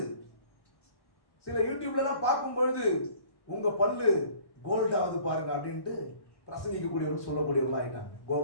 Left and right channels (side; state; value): right; late; 1.1 ms